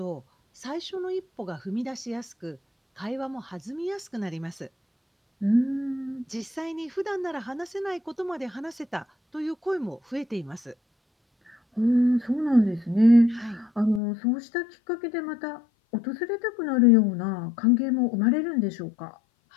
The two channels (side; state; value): right; drops out; at 14.0 s